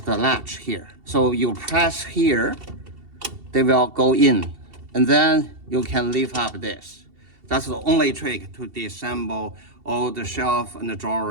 latch here. So you press here, they will go in, and then you can lift up this. That's the only trick to disassemble all the shelf and the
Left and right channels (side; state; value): left; late; 2.7 ms